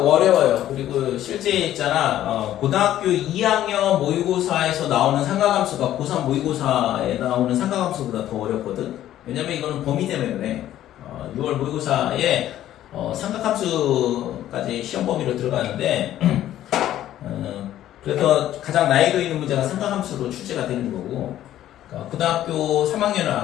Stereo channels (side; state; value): right; quieter; 12.6 dB